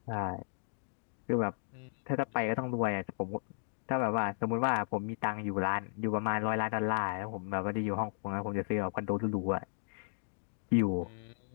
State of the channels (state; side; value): silent; right; 55 dB below the other